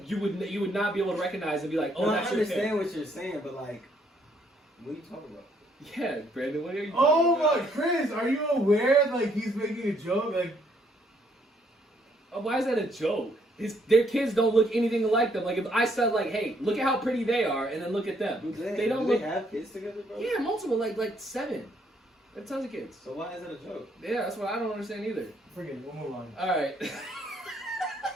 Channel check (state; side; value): normal; both; correlation 0.69